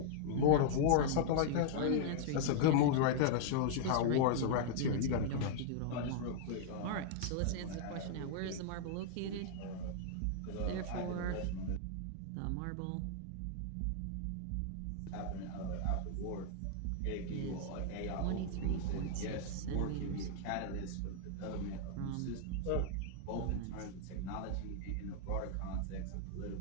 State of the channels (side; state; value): both; different; correlation -0.01